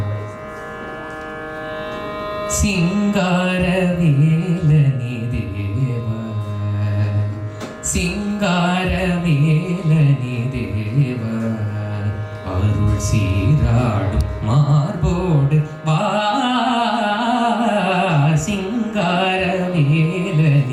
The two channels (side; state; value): both; identical; correlation 1.00